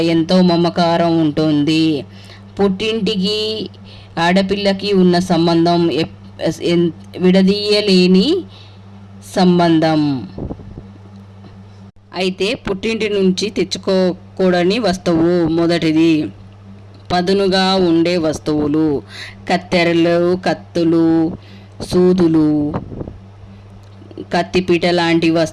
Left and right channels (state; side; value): identical; both; correlation 1.00